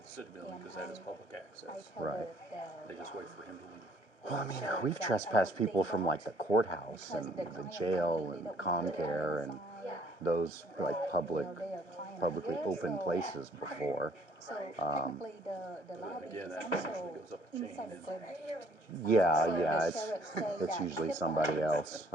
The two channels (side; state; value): right; late; 1.3 ms